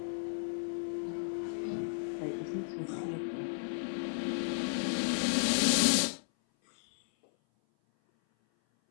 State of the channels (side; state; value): right; silent; 55 dB below the other